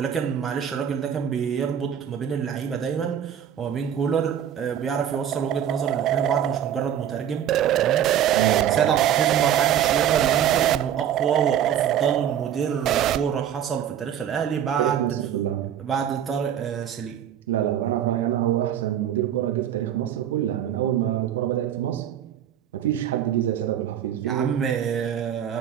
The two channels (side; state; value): left; quieter; 9.8 dB